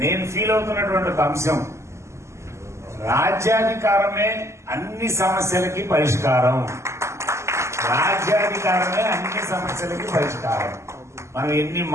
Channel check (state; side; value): late; left; 0.13 ms